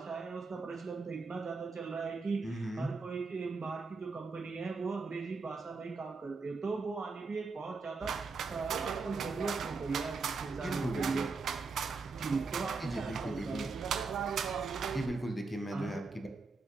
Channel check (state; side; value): quieter; left; 4.2 dB